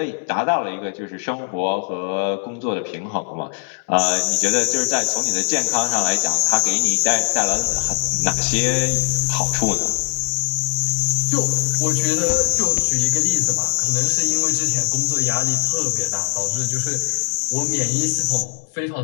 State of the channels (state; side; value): silent; right; 64 dB below the other